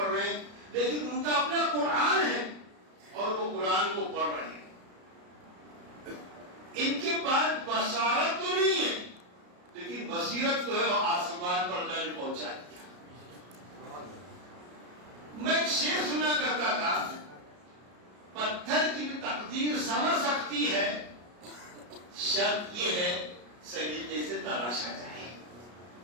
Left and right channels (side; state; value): left; late; 33 ms